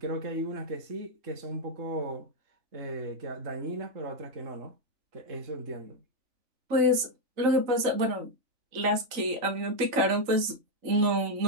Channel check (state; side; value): late; left; 3.9 ms